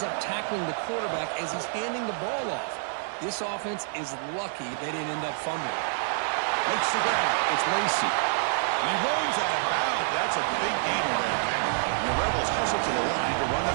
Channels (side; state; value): left; silent; 60 dB below the other